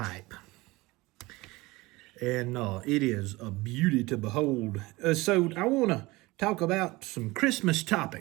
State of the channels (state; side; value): quieter; left; 21.5 dB